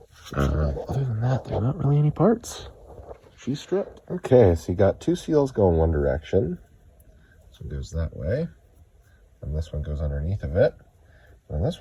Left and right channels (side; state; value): both; identical; correlation 1.00